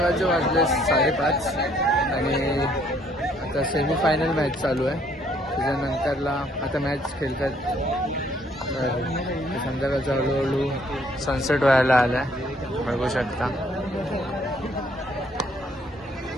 वाजले 5:30 आणि आता सेमीफायनल मॅच चालू आहे. त्याच्यानंतरला आता मॅच खेळतात. संध्याकाळचं हळूहळू सनसेट व्हायला आला आहे, बघू शकता.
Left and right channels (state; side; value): normal; both; correlation 0.65